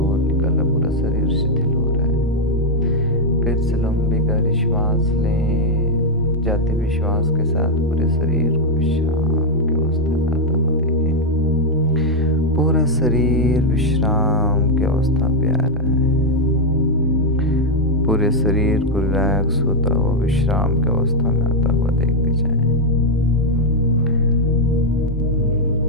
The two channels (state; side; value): normal; both; correlation -0.01